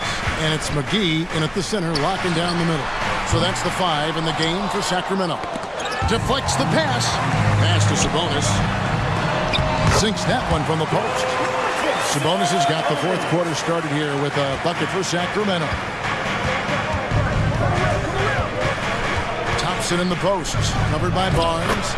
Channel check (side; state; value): both; identical; correlation 1.00